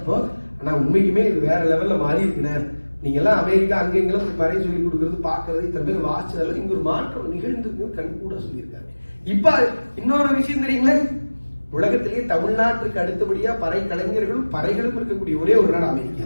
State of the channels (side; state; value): both; inverted; correlation -1.00